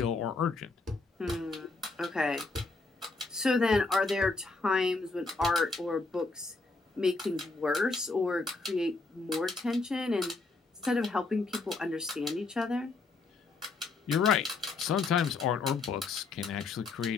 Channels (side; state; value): right; quieter; 3.8 dB